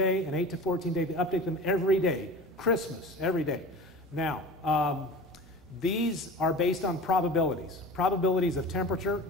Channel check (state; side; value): normal; both; correlation 0.36